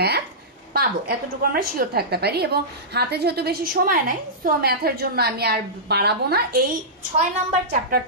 পাবো, এতটুকু আমরা শিওর থাকতে পারি। এবং হাতে যেহেতু বেশি সময় নাই, সো ম্যাথের জন্য আমি আর বাড়াবো না, এই 6 নাম্বার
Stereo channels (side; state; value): both; normal; correlation -0.16